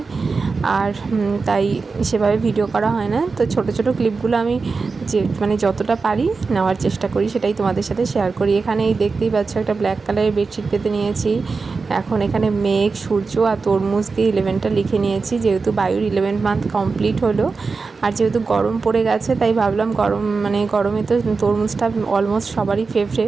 আর তাই সেভাবে ভিডিও করা হয় না। তো ছোট ছোট ক্লিপগুলো আমি যে যতটা পারি নেওয়ার চেষ্টা করি, সেটাই তোমাদের সাথে শেয়ার করি। এখানে এই দেখতেই পাচ্ছ একটা ব্ল্যাক কালারের বেডশিট পেতে নিয়েছি। এখন এখানে মেঘ, সূর্য আর তরমুজ দিয়ে 11টা লিখে নিয়েছি, যেহেতু বায়ুর 11 মান্থ কমপ্লিট হলো। আর যেহেতু গরম পড়ে গেছে তাই ভাবলাম গরমে তো তরমুজটা অলমোস্ট সবারই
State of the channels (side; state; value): left; quieter; 4.4 dB